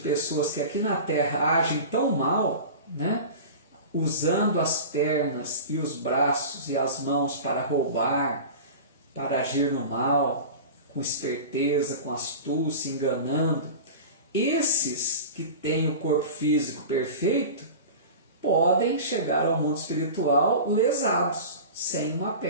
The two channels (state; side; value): inverted; both; correlation -0.33